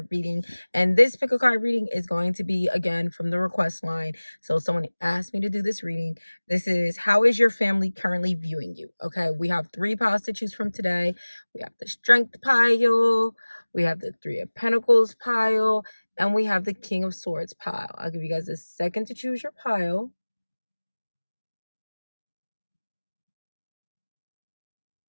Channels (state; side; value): inverted; both; correlation -1.00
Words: reading, and this pick a card reading is going to be again from the request line. So someone asked me to do this reading. This is, how is your family currently viewing you? Okay, we have 3 piles to choose from today. We have the Strength pile, we have the 3 of Pentacles pile, and we have the King of Swords pile. I'll give you guys a second to choose your pile.